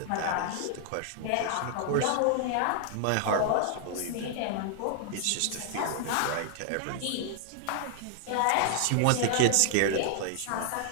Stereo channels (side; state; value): both; different; correlation 0.00